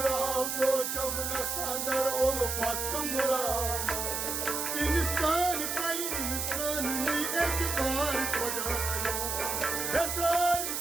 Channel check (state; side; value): noise; right; hiss, 2 dB below the sound